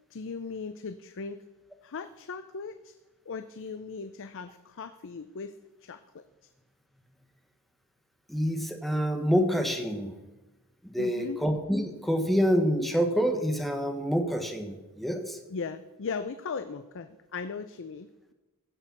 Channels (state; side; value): normal; both; correlation 0.73